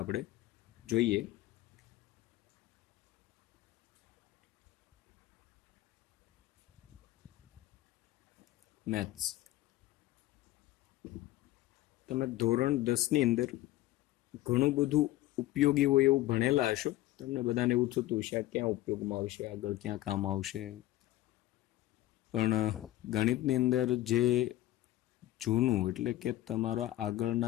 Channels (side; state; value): right; quieter; 15.7 dB